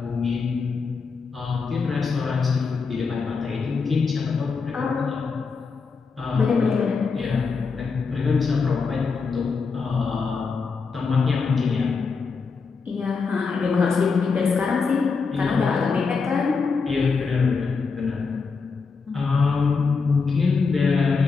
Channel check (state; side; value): quieter; right; 4.9 dB